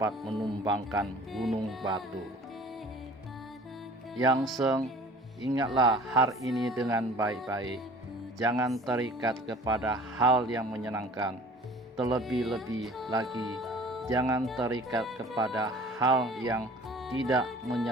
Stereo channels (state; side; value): normal; both; correlation 0.47